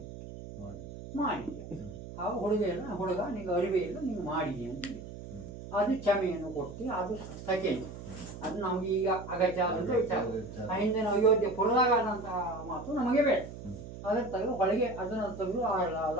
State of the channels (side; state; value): right; noise; hum, 12 dB below the sound